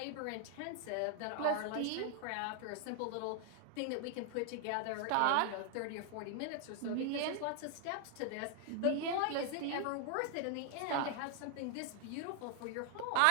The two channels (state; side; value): different; both; correlation 0.00